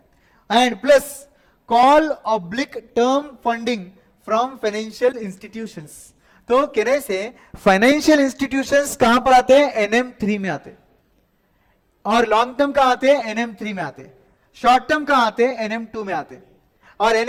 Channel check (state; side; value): identical; both; correlation 1.00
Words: and plus call oblique term funding from financial institutions. तो कहने से फाइनेंशियल इंस्टीट्यूशंस कहां पर आते हैं? NM3 में आते हैं। और लॉन्ग टर्म कहां आते हैं? NM3 में आते हैं। शॉर्ट टर्म कहां आते हैं? NM2 में आते हैं। और